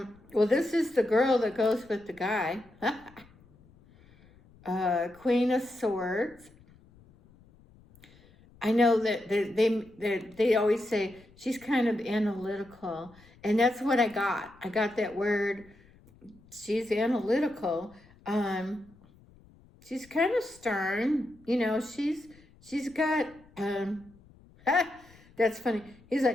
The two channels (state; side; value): noise; left; rumble, 27 dB below the sound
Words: this is the girl that goes with the guy. Queen of Swords. I know that they always say she's kind of analytical, and that's what I got. I got that word. She's analytical. She's kind of stern. You know, she's got that's funny. He's